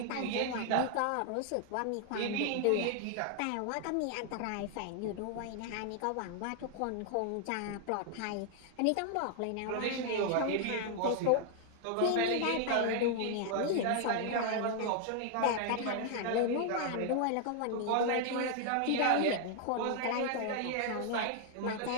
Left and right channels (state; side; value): different; both; correlation 0.00